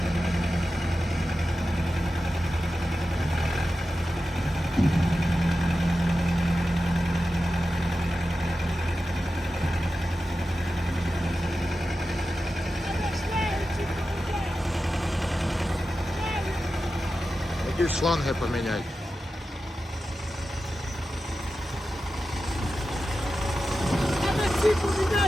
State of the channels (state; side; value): normal; both; correlation 0.92